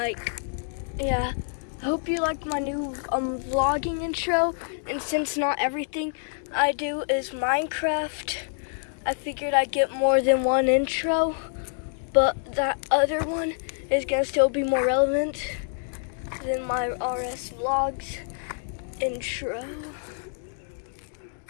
Yeah. I hope you like my new vlogging intro. And since not everything I do is Minecraft, I figured I'd get more than one intro. But that other one is gonna still be more relevant than my RS vlogs intro.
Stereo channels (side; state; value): right; silent; digital silence